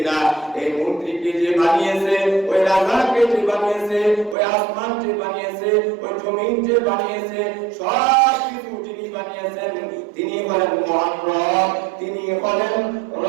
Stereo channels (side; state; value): left; drops out; at 4.4 s